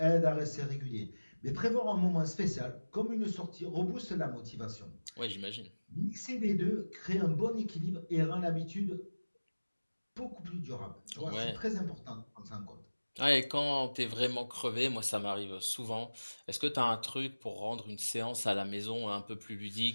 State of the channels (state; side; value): inverted; both; correlation -1.00